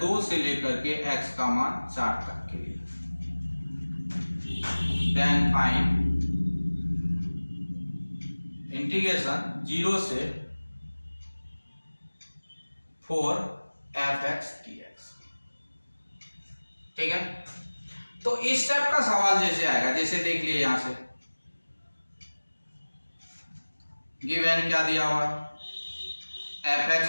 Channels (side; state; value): both; inverted; correlation -1.00